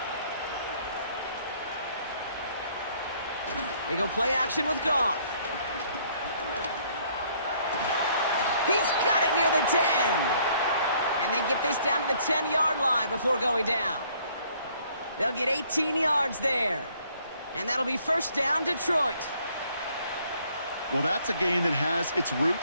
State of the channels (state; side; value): inverted; both; correlation -0.63